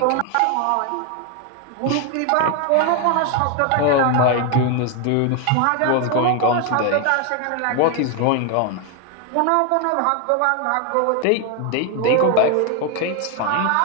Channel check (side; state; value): both; different; correlation 0.01